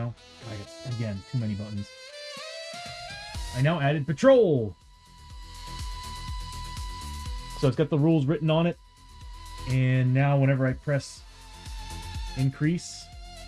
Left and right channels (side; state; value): both; identical; correlation 1.00